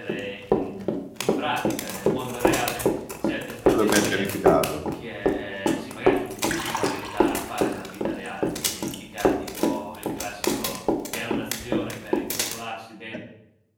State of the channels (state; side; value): identical; both; correlation 1.00